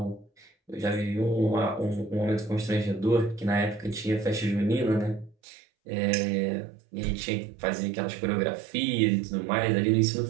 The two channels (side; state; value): left; drops out; at 5.4 s